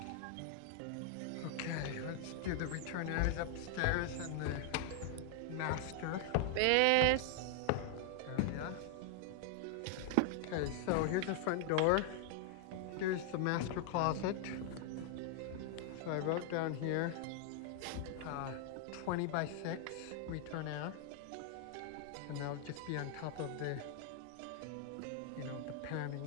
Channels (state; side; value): different; both; correlation 0.00